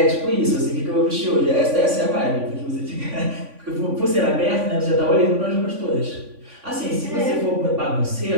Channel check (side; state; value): left; late; 3.5 ms